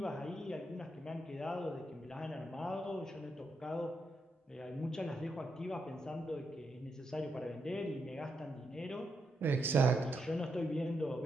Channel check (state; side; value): normal; both; correlation 0.82